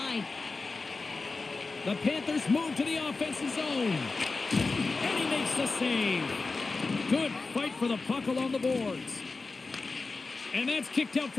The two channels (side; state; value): right; quieter; 3.9 dB